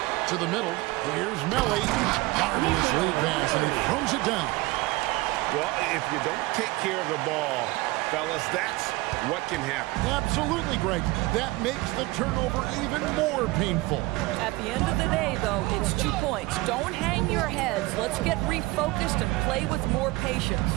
To the middle. Here's Melly. Marvelous lead pass, and he throws it down. Well, if you don't take care of the ball, fellas, that's what can happen. Absolutely, Greg. That makes the turnover even more painful. At the end of the day, though, it's 2 points. Don't hang your heads. Let's get refocused and play with more patience.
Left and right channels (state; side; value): quieter; left; 21.2 dB